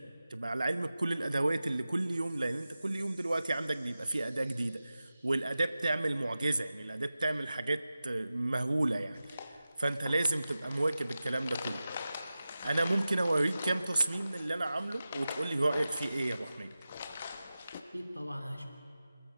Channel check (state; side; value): inverted; both; correlation -0.95